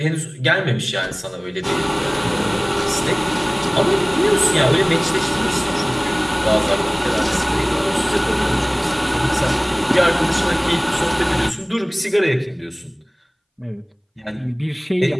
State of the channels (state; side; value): identical; both; correlation 1.00